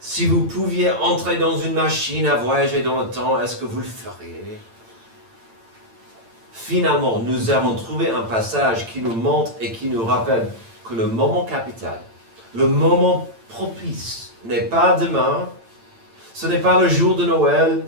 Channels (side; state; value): left; late; 8.9 ms